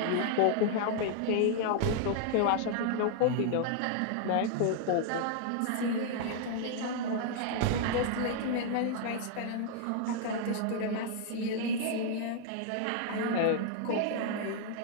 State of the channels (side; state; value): both; different; correlation 0.00